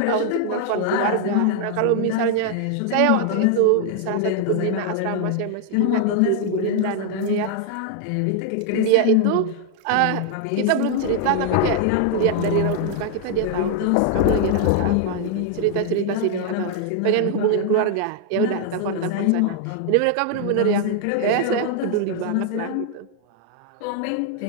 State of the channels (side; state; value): both; different; correlation 0.00